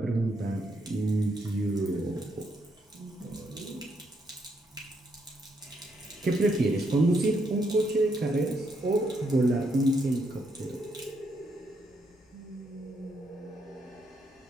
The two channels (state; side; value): normal; both; correlation 0.76